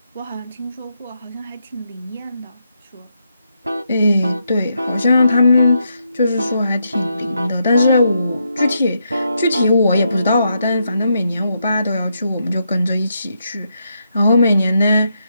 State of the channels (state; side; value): inverted; both; correlation -0.80